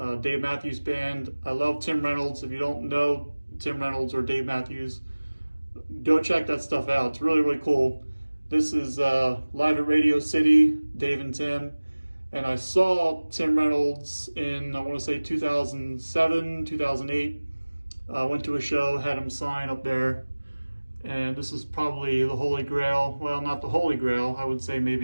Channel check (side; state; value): both; inverted; correlation -1.00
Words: Dave Matthews Band. I love Tim Reynolds. If you don't know Tim Reynolds or Dave Matthews, go check that stuff out. It's really, really cool. This is live at Radio City, Dave and Tim. And I saw Tim Reynolds in, I want to say 2007, 2008. Went to a show, had him sign up there. And this is probably the Holy Grail. Well, not the Holy Grail. I would say